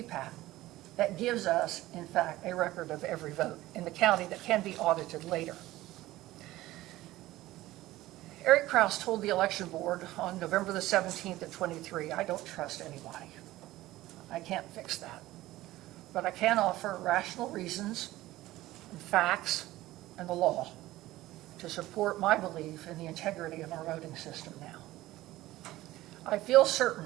that gives us, in fact, a record of every vote in the county that can be audited later. Eric Kraus told the election board on November the 17th of 23, I don't trust anybody. I can't fix that. But I can offer rational reasons and facts and the law to support my belief in the integrity of our voting system now. I feel certain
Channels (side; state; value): left; quieter; 16.7 dB